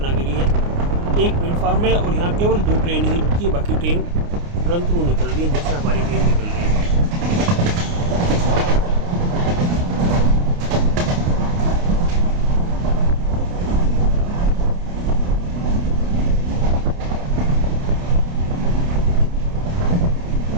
है। एक प्लेटफॉर्म है और यहाँ केवल 2 ट्रेन ही रुकती है, बाकी ट्रेन तुरंत निकल रही है जैसे हमारी ट्रेन निकल रही है।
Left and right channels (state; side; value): late; left; 29 ms